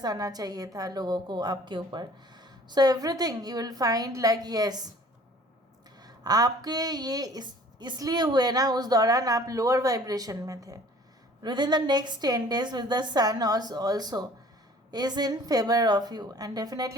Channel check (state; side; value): normal; both; correlation 0.51